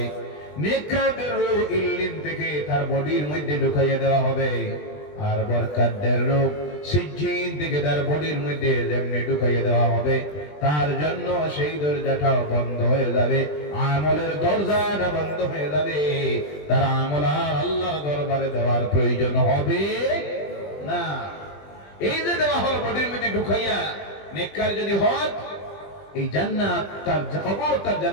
নেককারদের রূহ ইল্লিন থেকে তার বডির মধ্যে ঢুকাইয়া দেওয়া হবে, আর বরকতদের রূহ সিজ্জিন থেকে তার বডির মধ্যে যেমনি ঢুকাইয়া দেওয়া হবে, তার জন্য সেই দরজাটাও বন্ধ হয়ে যাবে, আমলের দরজাটা বন্ধ হয়ে যাবে। তার আমল আর আল্লাহর দরবারে দেওয়ার প্রয়োজন হবে না। এই যে দেওয়া হলো বডির মধ্যে ঢুকাইয়া, নেককার যদি হয় এই জান্নাত তার কবর, তার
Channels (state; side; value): late; right; 20 ms